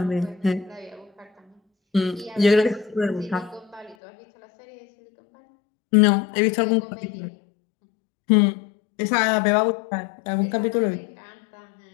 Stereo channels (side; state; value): right; drops out; at 4.0 s